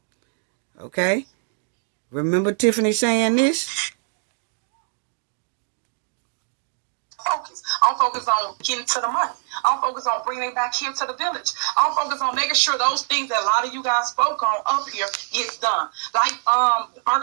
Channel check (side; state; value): left; silent; digital silence